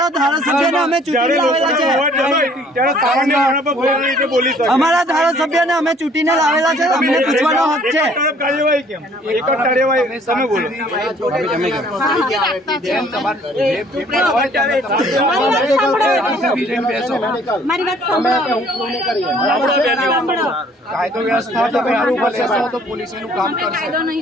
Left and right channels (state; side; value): normal; both; correlation 0.58